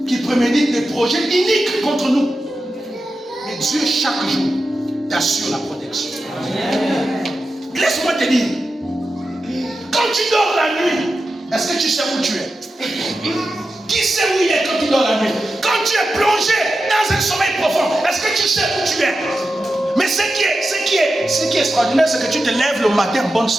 Qui préméditent des projets iniques contre nous. Mais Dieu, chaque jour, t'assure la protection. Laisse-moi te dire, quand tu dors la nuit, est-ce que tu sais où tu es? Qui sait où il est quand tu dors la nuit? Quand tu es plongé dans un sommeil profond, est-ce que tu sais où tu es? Mais ce qui est extraordinaire, c'est que tu te lèves le matin en bonne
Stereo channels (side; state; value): both; normal; correlation 0.91